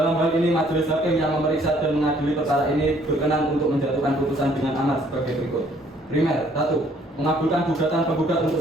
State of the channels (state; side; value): normal; both; correlation 0.62